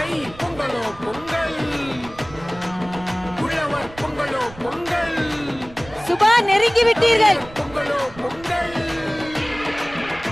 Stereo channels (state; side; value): noise; right; rumble, 18 dB below the sound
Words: தை பொங்கலோ பொங்கல், உழவர் பொங்கலோ பொங்கல். சுபா, நெருங்கி விட்டீர்கள். பொங்கலோ பொங்கல்.